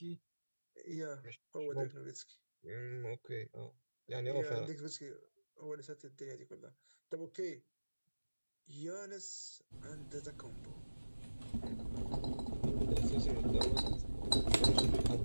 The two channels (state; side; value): inverted; both; correlation -1.00